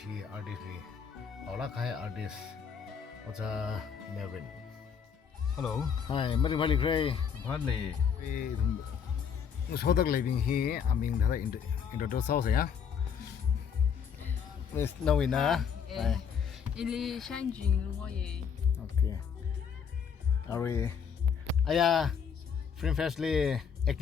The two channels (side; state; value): right; quieter; 7.1 dB